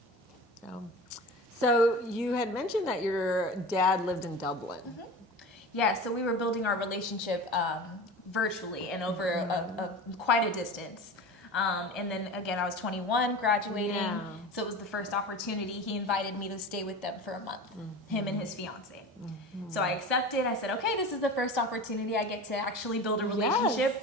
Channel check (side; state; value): both; normal; correlation 0.33